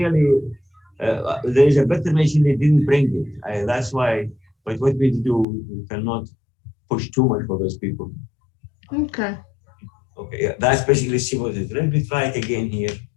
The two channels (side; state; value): right; drops out; at 5.5 s